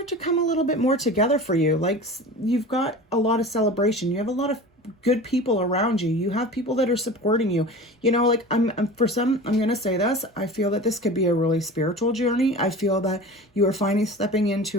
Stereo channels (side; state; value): both; normal; correlation 0.35